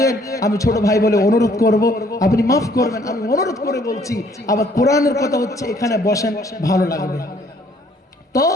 আমি ছোট ভাই বলে অনুরোধ করব, আপনি মাফ করবেন, আমি অনুরোধ করে বলছি। আবার কোরআনের কথা হচ্ছে, এখানে বসেন, ভালো লাগবে। তো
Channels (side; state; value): both; normal; correlation 0.62